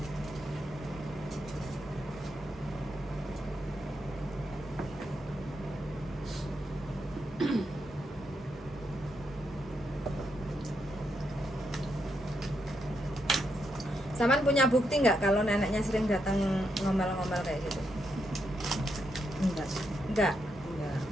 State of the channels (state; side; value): normal; both; correlation 0.81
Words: Saman punya bukti nggak kalau neneknya sering datang ngomel-ngomel kayak gitu? Enggak sih. Enggak. Enggak,